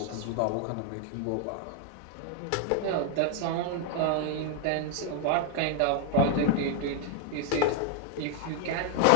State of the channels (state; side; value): different; both; correlation 0.00